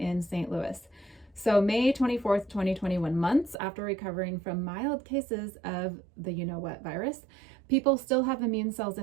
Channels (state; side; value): drops out; left; at 3.6 s